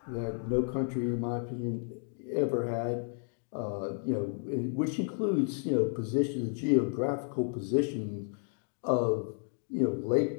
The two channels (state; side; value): silent; right; 56 dB below the other